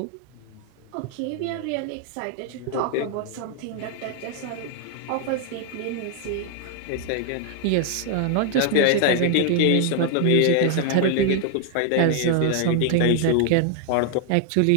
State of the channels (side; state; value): both; different; correlation 0.00